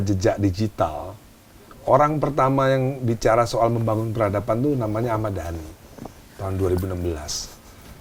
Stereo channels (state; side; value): identical; both; correlation 1.00